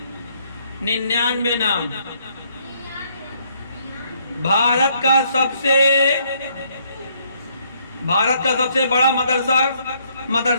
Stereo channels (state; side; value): inverted; both; correlation -0.68